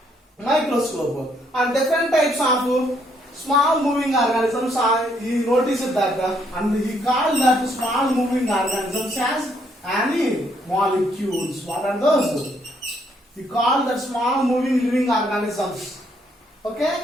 microscope, and different types of small moving organisms he noticed that and he called that small moving organisms as animalcules. What are those? He called that small moving living organisms.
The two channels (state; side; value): normal; both; correlation 0.71